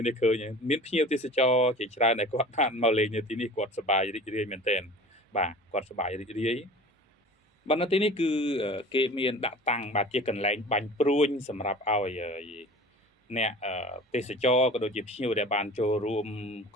នេះឃើញមានភ្ញៀវទេសចរជាច្រើនដែលគាត់បានមកលេងនៅទីនេះគាត់សប្បាយរីករាយមែនទែនបាទគាត់សប្បាយរីករាយបាទនៅទីនេះគឺគេមានដាក់តាំងបាទជាកន្លែងបាញ់ព្រួញសម្រាប់ឲ្យអ្នកទេសចរក៏ដូចជាភ្ញៀវដែលបានចូលរួម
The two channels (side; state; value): both; normal; correlation 0.40